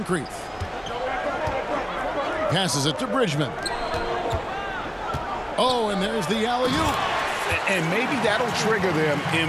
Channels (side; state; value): both; identical; correlation 1.00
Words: Passes it to Bridgman. Oh, and there's the alley-oop. And maybe that'll trigger them.